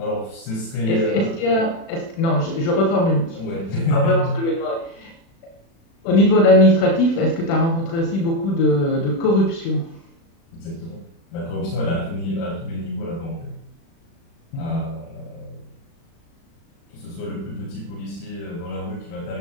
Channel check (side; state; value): right; late; 36 ms